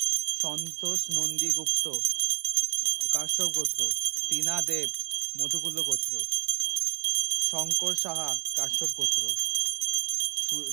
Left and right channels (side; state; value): left; silent; digital silence